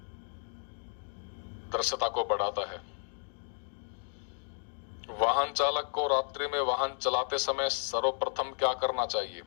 दृश्यता को बढ़ाता है। वाहन चालक को रात्रि में वाहन चलाते समय सर्वप्रथम क्या करना चाहिए?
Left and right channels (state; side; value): silent; right; digital silence